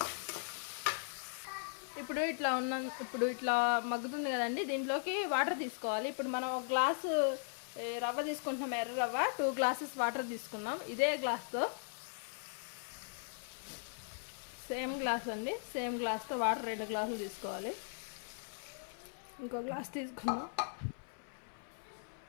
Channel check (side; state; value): right; silent; 52 dB below the other